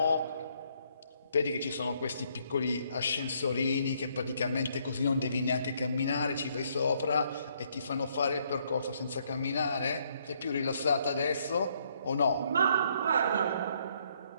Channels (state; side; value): inverted; both; correlation -0.70